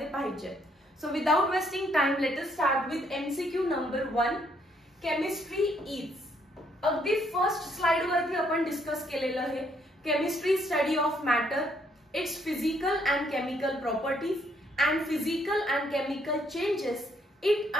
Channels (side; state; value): both; normal; correlation 0.70